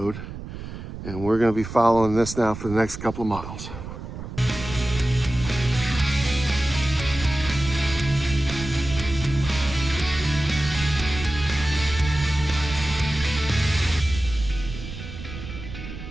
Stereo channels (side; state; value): right; noise; rumble, 10 dB below the sound